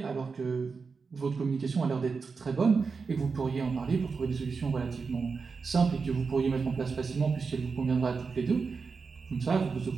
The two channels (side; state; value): left; quieter; 4.9 dB